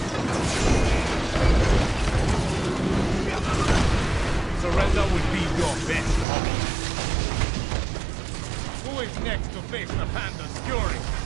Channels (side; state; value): left; drops out; at 6.2 s